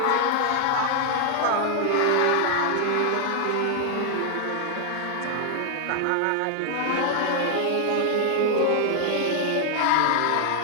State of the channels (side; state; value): both; different; correlation 0.00